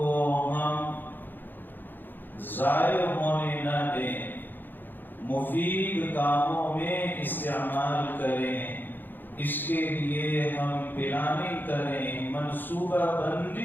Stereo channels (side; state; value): right; late; 0.090 ms